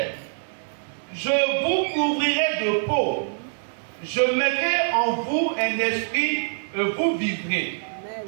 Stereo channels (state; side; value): silent; left; digital silence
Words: Je vous couvrirai de peau. Je mettrai en vous un esprit et vous vivrez.